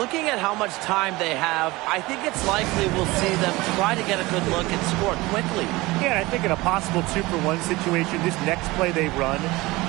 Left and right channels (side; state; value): left; quieter; 21.1 dB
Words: at how much time they have, I think it's likely we'll see them try to get a good look and score quickly. Yeah, I think in a possible 2-for-1 situation, this next play they run,